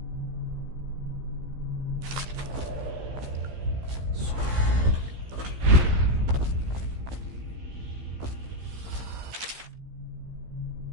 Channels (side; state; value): left; late; 15 ms